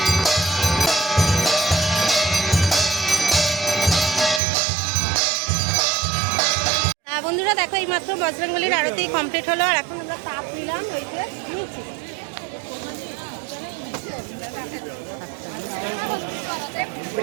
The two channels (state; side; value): drops out; left; at 4.4 s